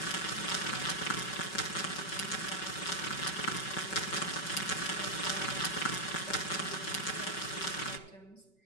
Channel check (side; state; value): right; late; 5.3 ms